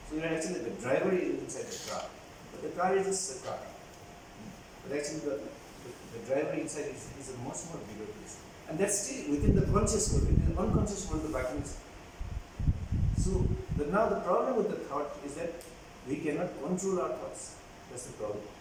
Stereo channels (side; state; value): both; identical; correlation 1.00